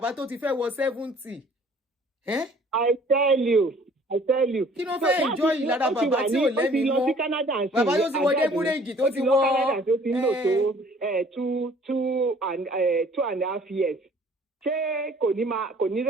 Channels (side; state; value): both; normal; correlation 0.54